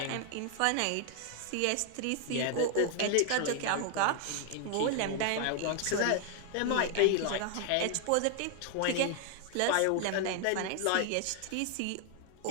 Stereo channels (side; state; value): both; different; correlation 0.00